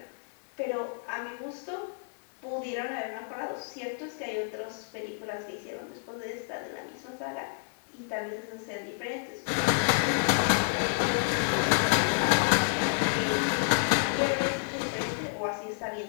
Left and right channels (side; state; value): right; silent; digital silence